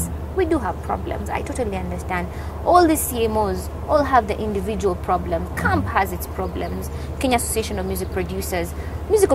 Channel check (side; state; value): both; identical; correlation 1.00